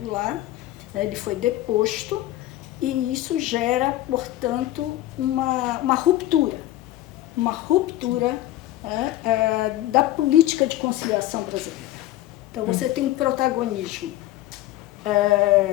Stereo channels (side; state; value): right; quieter; 15.0 dB